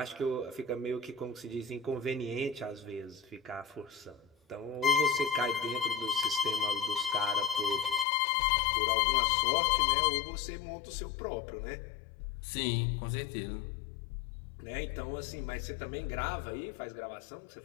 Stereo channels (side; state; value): right; drops out; at 8.1 s